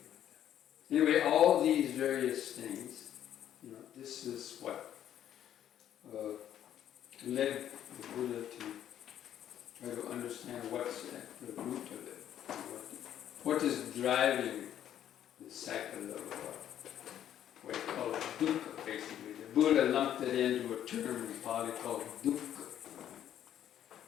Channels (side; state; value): right; quieter; 10.7 dB